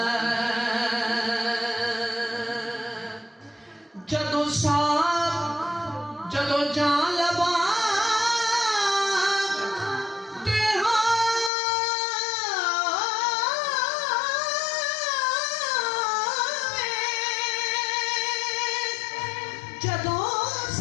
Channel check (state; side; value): drops out; right; at 11.5 s